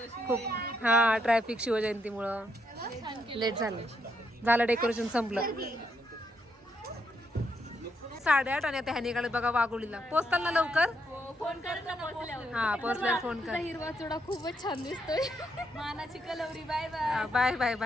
खूप हा ट्रॅफिक शिवजयंतीमुळं लेट झालं. डेकोरेशन संपलं. 8:30 आणि आता ह्या निघाले बघा वाघोलीला. पोचताल ना लवकर? फोन करत हा पोचल्यावर फोन कर. हिरवा चुडा खूपच छान दिसतोय. मानाची कलवरी. Bye bye. Bye bye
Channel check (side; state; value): both; normal; correlation 0.77